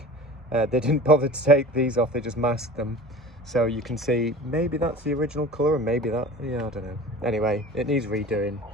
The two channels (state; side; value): normal; both; correlation 0.38